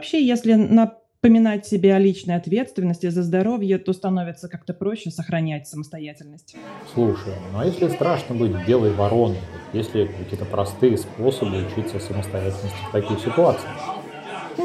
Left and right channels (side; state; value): both; identical; correlation 1.00